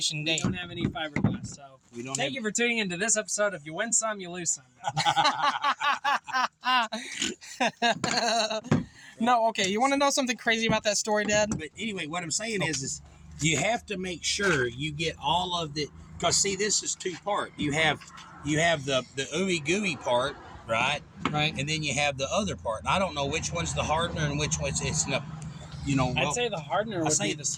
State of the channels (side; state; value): both; identical; correlation 1.00